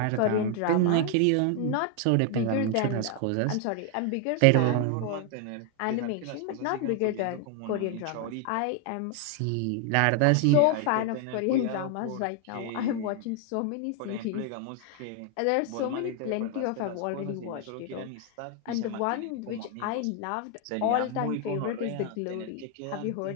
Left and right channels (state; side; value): different; both; correlation 0.00